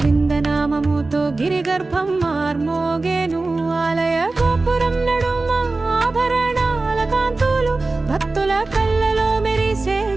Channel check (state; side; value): quieter; left; 3.4 dB